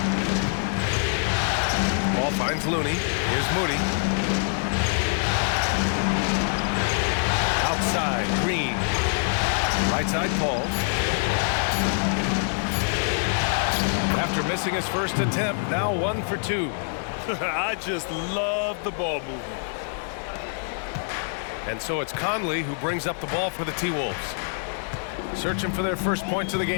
Ball finds Looney. Here's Moody. Outside, Green. Right side, Paul. After missing his first attempt, now 1 for 2. I just love the ball movement. And so it's Conley who brings up the ball for the T-Wolves. Searching for their first points of the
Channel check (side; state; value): right; silent; digital silence